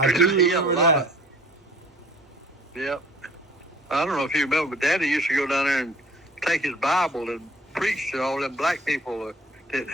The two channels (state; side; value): normal; both; correlation 0.52